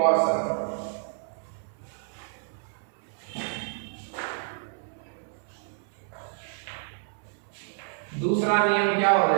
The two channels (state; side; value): silent; left; 59 dB below the other